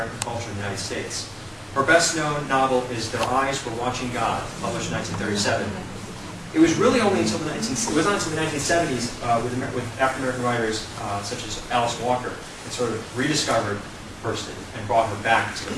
culture in the United States. Her best-known novel is Their Eyes Were Watching God, published in 1937. It was really only until the 1970s with African-American writers such as Alice Walker that sort of rediscovered Hurston and brought her back to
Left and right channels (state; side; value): identical; both; correlation 1.00